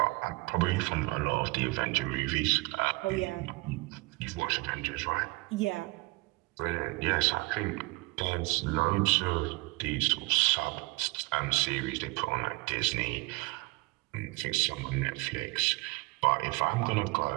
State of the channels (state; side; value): quieter; left; 26.0 dB